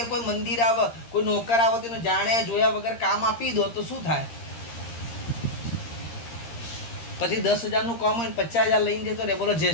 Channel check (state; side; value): late; right; 13 ms